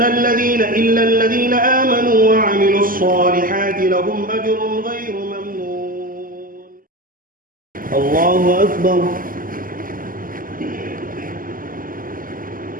الذين آمنوا وعملوا الصالحات لهم أجر غير ممنون. الله أكبر.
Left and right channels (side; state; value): left; late; 0.41 ms